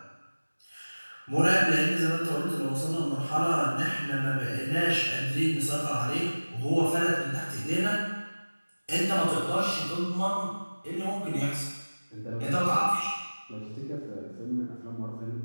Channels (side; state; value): both; inverted; correlation -1.00